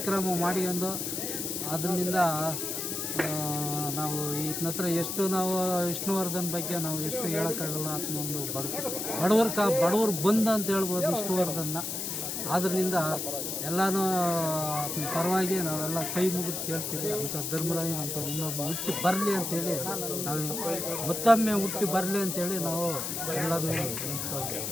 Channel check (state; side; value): noise; left; hiss, 3 dB below the sound